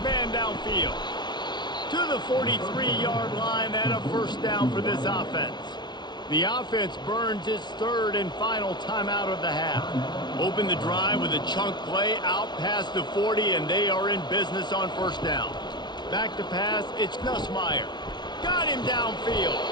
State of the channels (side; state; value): right; late; 0.20 ms